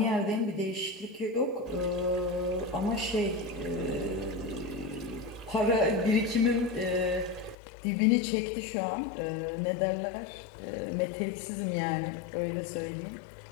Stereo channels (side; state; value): right; drops out; at 7.6 s